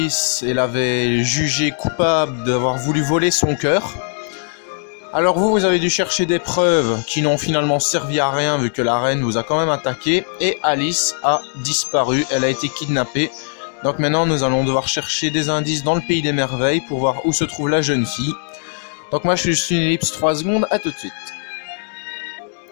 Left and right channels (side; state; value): right; silent; digital silence